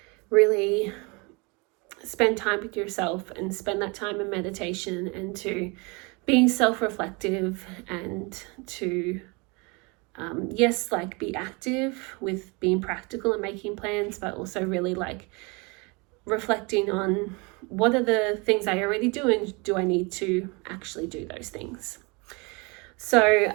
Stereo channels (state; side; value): quieter; left; 28.9 dB